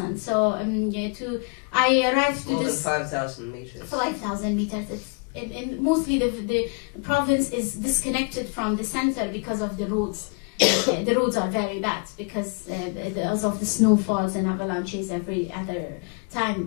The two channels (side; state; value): right; quieter; 33.5 dB